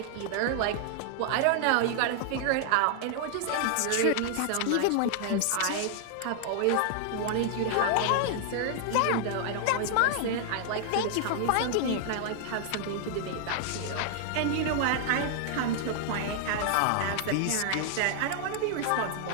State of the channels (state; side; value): different; both; correlation 0.00